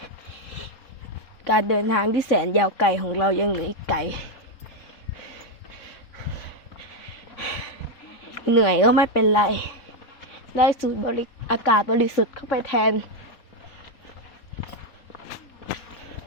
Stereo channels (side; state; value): right; late; 3.8 ms